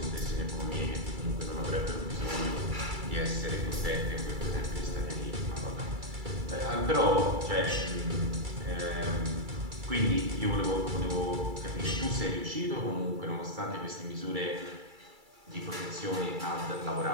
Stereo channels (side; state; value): left; late; 2.3 ms